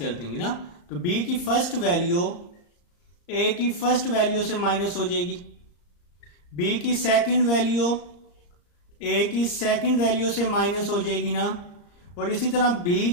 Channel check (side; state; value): right; late; 34 ms